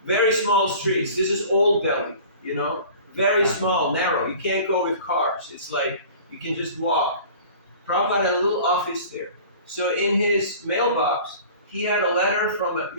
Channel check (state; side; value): inverted; both; correlation -0.43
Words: Very small streets. This is old Delhi, very small, narrow. You can't go with cars. It's like you can just walk. Prabhupada had a little office there. So in his mailbox, he had a letter from